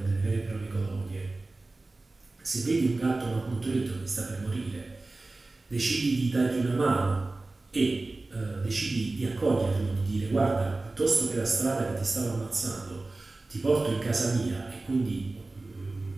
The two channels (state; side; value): quieter; left; 3.2 dB